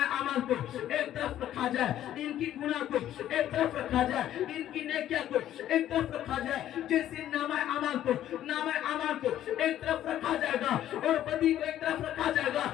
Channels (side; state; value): right; quieter; 12.0 dB